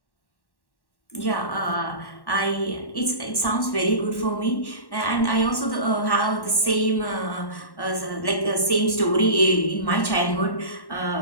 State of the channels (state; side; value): late; right; 1.1 ms